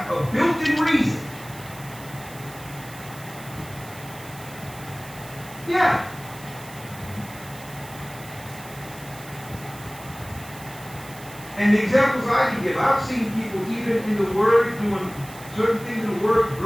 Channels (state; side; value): noise; right; hiss, 17 dB below the sound